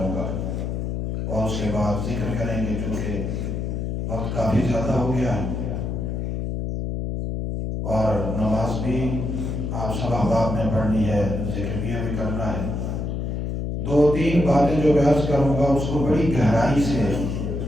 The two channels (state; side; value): noise; left; hum, 2 dB below the sound